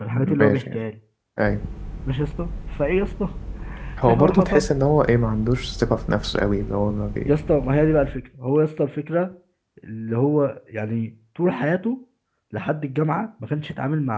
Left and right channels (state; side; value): identical; both; correlation 1.00